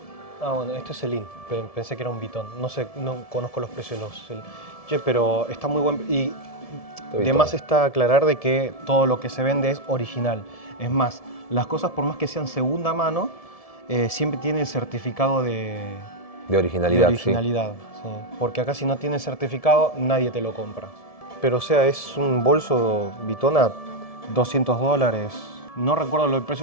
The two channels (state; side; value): late; right; 1.7 ms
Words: bueno, este es Celine. Pensé que era un Vuitton. No sé, no conozco los precios de los Celine. Che, pero está muy buen... Y de más está aclarar de que todo lo que se vende es original. Es más, las cosas por más que sean segunda mano, siempre tiene el certificado de originalidad. Sí. Porque acá si no tiene certificado, nadie te lo compra. Pero o sea, es un bolso Vuitton a $200. No recuerdo el precio